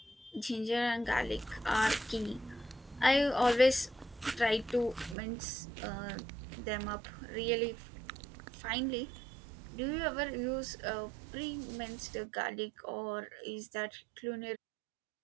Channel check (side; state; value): left; drops out; at 5.2 s